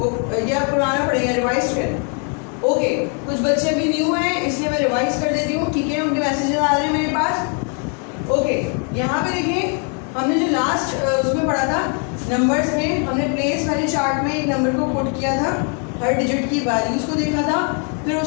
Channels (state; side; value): quieter; right; 40.0 dB